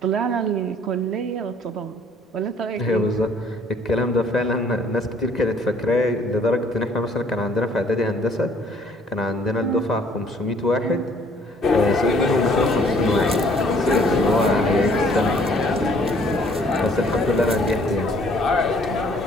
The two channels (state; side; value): normal; both; correlation 0.59